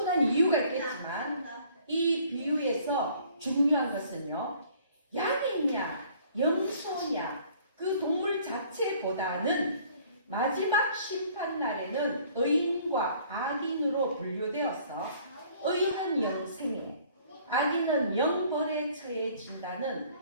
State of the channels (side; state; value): both; inverted; correlation -0.56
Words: 이유가 있겠지만 이 비유에서 중요한 것은요, 양이냐 염소냐 그 동물 자체보다는 마지막 심판날에는 의인과 악인으로 분류되어서 의인은 영생에 악인은 영벌에 처해진다는